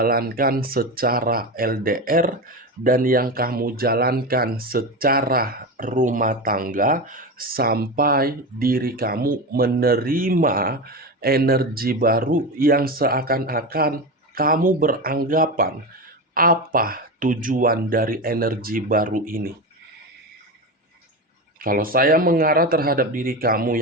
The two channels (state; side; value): normal; both; correlation 0.21